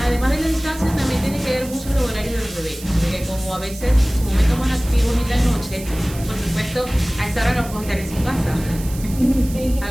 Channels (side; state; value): right; noise; hiss, 15 dB below the sound